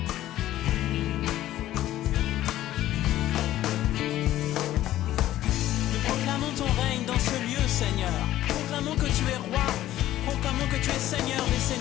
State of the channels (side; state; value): right; quieter; 13.9 dB